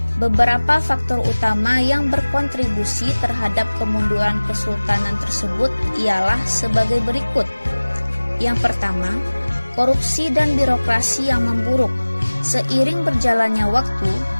Beberapa faktor utama yang berkontribusi terhadap kemunduran kesultanan tersebut ialah sebagai berikut. Yang pertama, korupsi dan birokrasi yang memburuk. Seiring berjalannya waktu,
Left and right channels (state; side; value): inverted; both; correlation -1.00